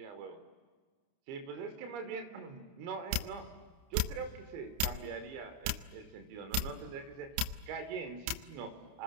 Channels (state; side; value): late; left; 30 ms